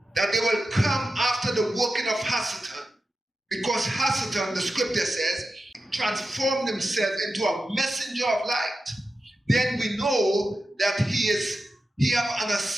that they will come after the working of Hasatan, because Hasatan, the scripture says, transformed himself into a messenger of light, then we know that he have an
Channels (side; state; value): both; normal; correlation 0.91